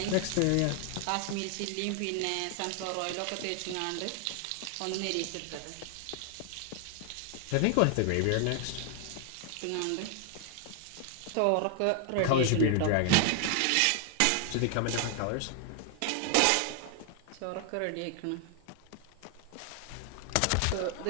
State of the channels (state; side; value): different; both; correlation 0.00